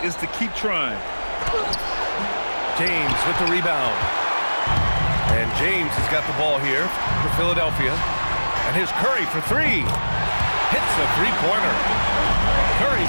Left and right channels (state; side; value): inverted; both; correlation -1.00